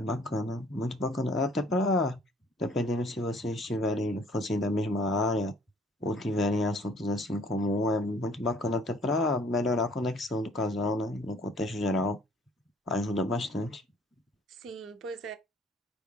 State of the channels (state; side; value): normal; both; correlation 0.57